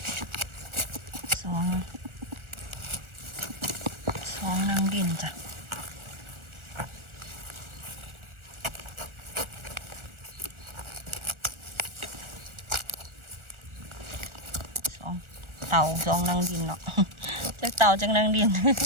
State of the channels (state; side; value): late; left; 1.4 ms